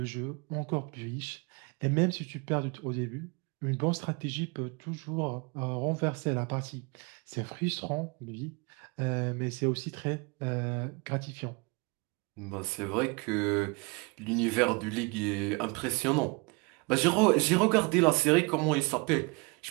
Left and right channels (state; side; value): quieter; left; 29.0 dB